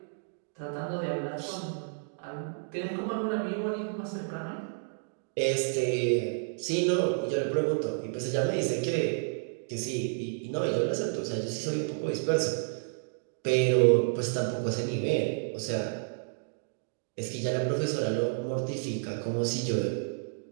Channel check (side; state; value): left; silent; digital silence